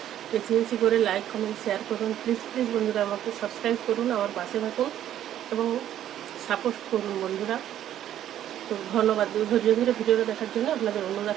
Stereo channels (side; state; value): left; quieter; 11.4 dB